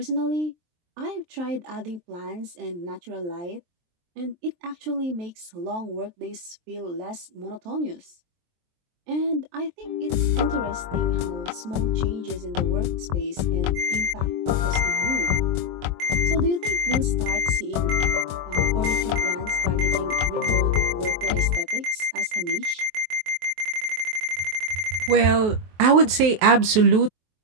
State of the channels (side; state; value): left; late; 23 ms